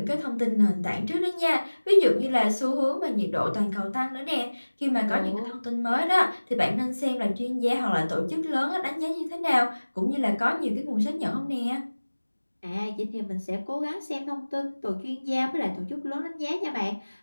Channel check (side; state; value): both; inverted; correlation -1.00